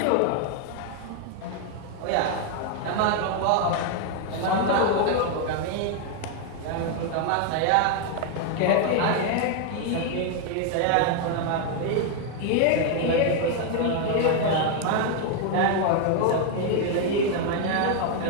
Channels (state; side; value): different; both; correlation 0.00